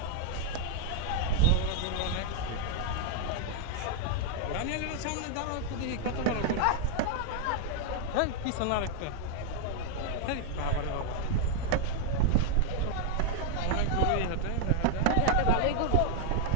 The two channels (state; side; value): different; both; correlation 0.00